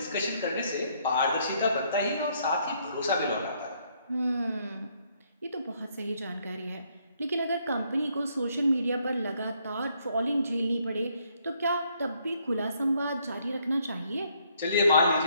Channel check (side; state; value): both; inverted; correlation -0.70